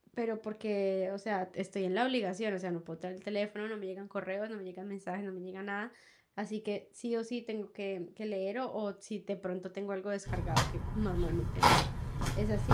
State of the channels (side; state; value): both; identical; correlation 1.00